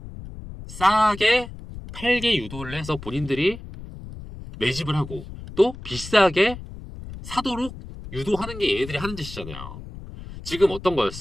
싸게 팔게 유도를 해서 본인들이 매집을 하고, 또 비싸게 사도록 유도하는 게 얘네들이 하는 짓이잖아요. 지금 어떤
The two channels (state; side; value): noise; left; rumble, 13 dB below the sound